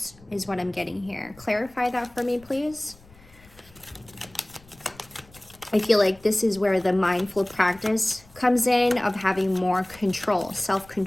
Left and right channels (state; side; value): noise; left; rumble, 25 dB below the sound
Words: is what I'm getting here. Clarify that for me, please. I feel like this is where the mindful practice comes in, of having more control,